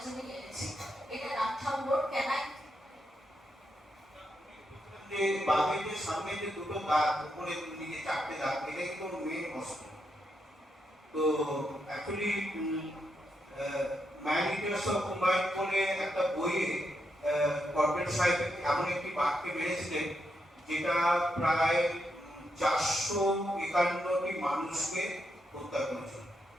জন্য এনেছি। এটা রামথাম্বোর ক্যানাই, যে বাঘের যে সামনে যে দুটো দাঁত, উপরে দিকে চারটে দাঁত, এটা কিন্তু মেন অস্ত্র। তো actually man Eaters of Mumbai বলে একটা বইয়ে কর্পোরেট সাহেব এমন একটি বাঘকে মেরেছিলেন যেটা প্রায় 451টি মানুষকে হত্যা করেছিল।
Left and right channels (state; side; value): normal; both; correlation 0.82